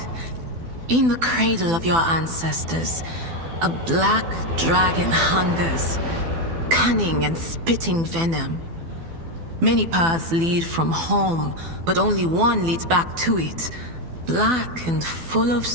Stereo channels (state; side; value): late; left; 12 ms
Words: In the cradle of your ancestors, a black dragon hungers, cunning and spitting venom. Many paths lead from home, but only one leads back to it. Black and full of